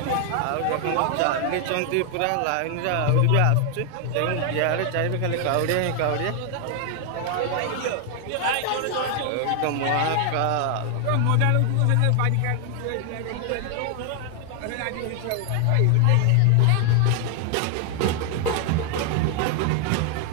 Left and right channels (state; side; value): different; both; correlation 0.00